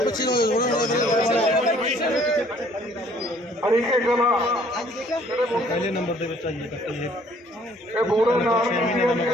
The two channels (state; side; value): normal; both; correlation 0.59